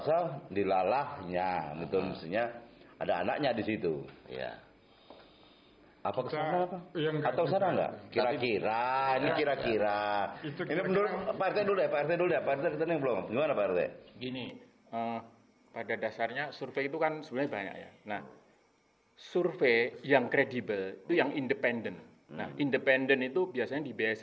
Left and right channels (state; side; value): identical; both; correlation 1.00